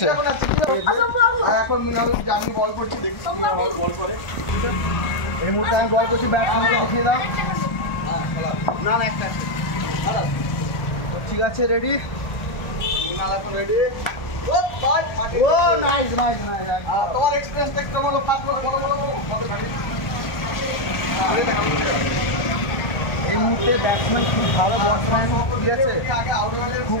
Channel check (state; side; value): late; right; 1.4 ms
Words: এখন আমি বল করছি দেখি বল করে এই মুহূর্তে আমি বল করছি ব্যাটসম্যানকে দেখিয়ে দাও না একটা ঠিক আছে রেডি মিনাল এখন রেডি ও ভাই ও নাইস তোমার এক্সপেরিয়েন্স দেখতে বলো ফাস্ট বলো এই মুহূর্তে ব্যাটসম্যান খুব ভালো ব্যাটসম্যান ঠিক আছে খুব